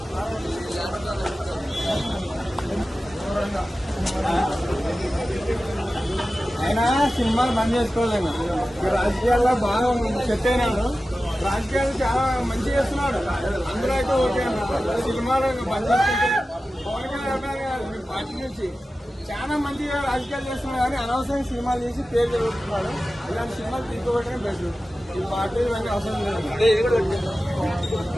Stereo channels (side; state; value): both; normal; correlation 0.94